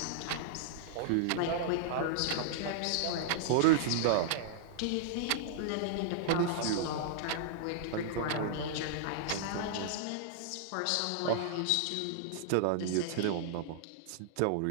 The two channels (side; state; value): both; different; correlation -0.01